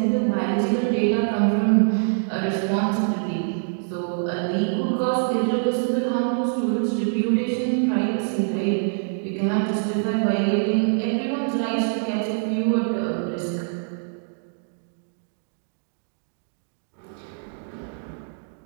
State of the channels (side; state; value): left; silent; digital silence